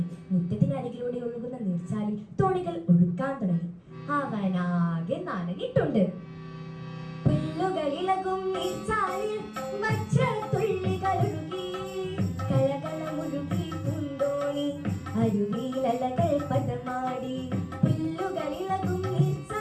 മുറ്റത്തിനരികിലൂടെ ഒഴുകുന്ന നീർച്ചാലിൽ തോണികൾ ഒഴുക്കാൻ തുടങ്ങി. അവനാകെ നനഞ്ഞിട്ടുണ്ട്. പുല്ലുകളിളകും നീർച്ചാലിൽ വജ്രത്തുള്ളികളൊഴുകി, കലകളമുഴുകി പൂന്തോണി അരുവിയിലലകൾ പദമാടി. പുല്ലുകളിളകും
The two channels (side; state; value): both; identical; correlation 1.00